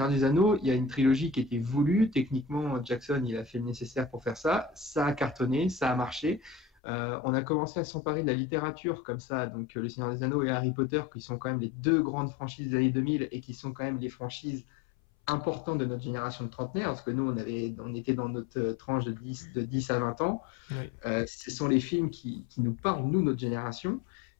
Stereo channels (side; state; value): right; drops out; at 6.7 s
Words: des Anneaux, il y a une trilogie qui était voulue. Techniquement, Jackson, il a fait le nécessaire pour faire ça. Ça a cartonné, ça a marché. On a commencé à s'emparer de la littérature comme ça. Donc, Le Seigneur des Anneaux et Harry Potter, qui sont quand même les 2 grandes franchises des années 2000 et qui sont quand même les franchises importantes de notre génération de trentenaires, parce que nous, on était dans notre tranche de 10 à 20 ans. Oui. Ce sont les films qui nous parlent, nous, notre génération.